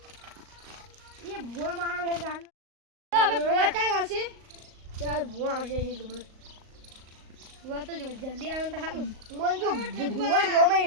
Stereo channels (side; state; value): left; late; 38 ms